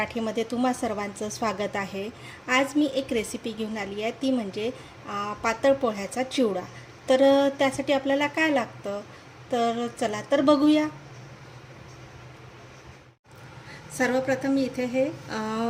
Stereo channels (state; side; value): identical; both; correlation 1.00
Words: तुम्हा सर्वांचं स्वागत आहे। आज मी एक रेसिपी घेऊन आली आहे, ती म्हणजे पातळ पोह्याचा चिवडा। तर त्यासाठी आपल्याला काय लागतं तर चला तर बघूया। सर्वप्रथम मी इथे हे